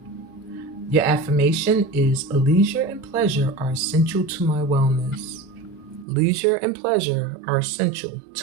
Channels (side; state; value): left; drops out; at 6.1 s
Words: Your affirmation is leisure and pleasure are essential to my wellness. Leisure and pleasure are essential